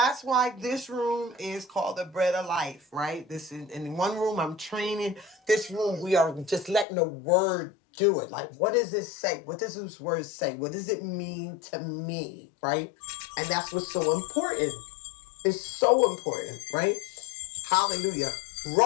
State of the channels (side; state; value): right; drops out; at 6.9 s